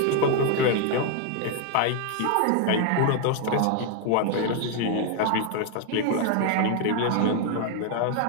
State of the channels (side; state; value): both; different; correlation 0.00